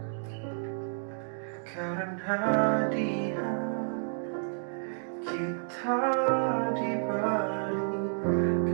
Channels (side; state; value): left; silent; digital silence